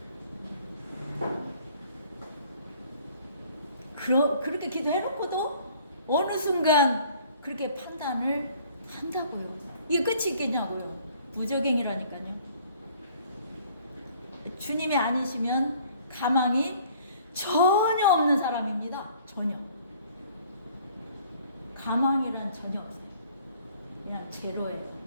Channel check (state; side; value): inverted; both; correlation -0.56